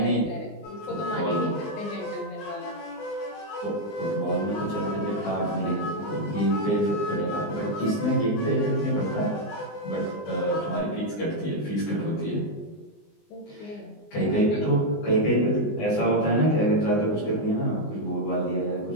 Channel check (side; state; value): right; late; 19 ms